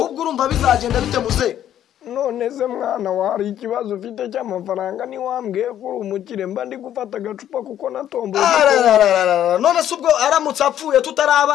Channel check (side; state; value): right; quieter; 11.0 dB